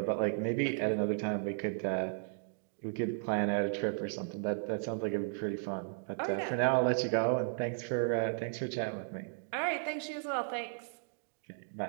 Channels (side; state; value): left; silent; digital silence